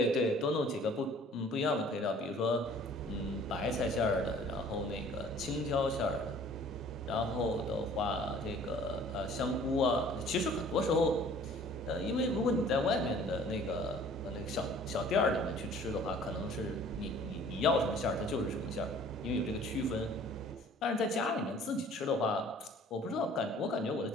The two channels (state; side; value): normal; both; correlation 0.52